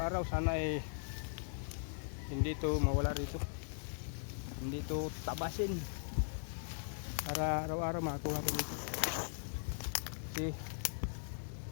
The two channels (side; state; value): right; silent; digital silence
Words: Sana hindi ito mawala rito. Hindi ito tabasin. Para araw-araw makakuha ko dito. Kasi